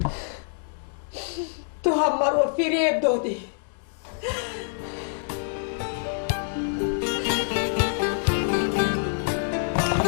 تو هم مرا فریب دادی.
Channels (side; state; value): right; silent; digital silence